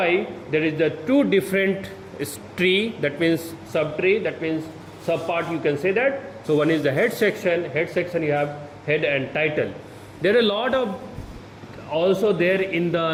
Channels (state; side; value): identical; both; correlation 1.00